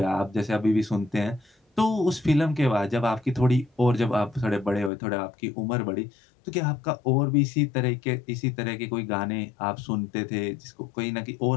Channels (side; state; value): right; drops out; at 4.9 s